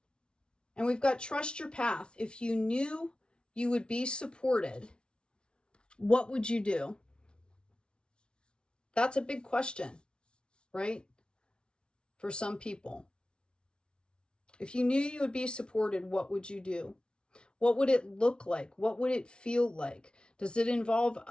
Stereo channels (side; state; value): right; late; 0.056 ms